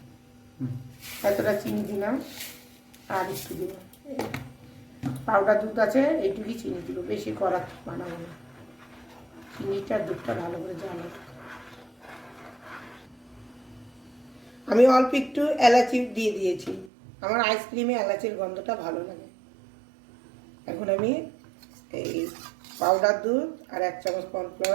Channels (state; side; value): drops out; left; at 16.9 s